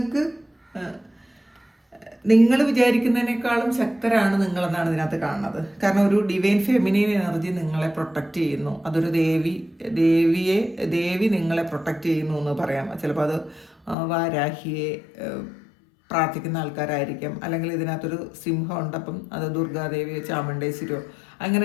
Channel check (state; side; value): drops out; right; at 14.0 s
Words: നിങ്ങൾ വിചാരിക്കുന്നതിനേക്കാളും ശക്തരാണ് നിങ്ങളെന്നാണ് ഇതിനകത്ത് കാണുന്നത്. കാരണം ഒരു ഡിവൈൻ ഫെമിനൈൻ എനർജി നിങ്ങളെ പ്രൊട്ടക്റ്റ് ചെയ്യുന്നു. അതൊരു ദേവി നിങ്ങളെ പ്രൊട്ടക്റ്റ് ചെയ്യുന്നു എന്ന് പറയാം. ചിലപ്പോൾ അത് വാരാഹിയെ പ്രാർത്ഥിക്കുന്ന ആൾക്കാരായിരിക്കാം, അല്ലെങ്കിൽ ഇതിനകത്തൊരു സിംഹം ഉണ്ട്, അപ്പം അത് ദുർഗാദേവിയോ ചാമുണ്ടേശ്വരിയോ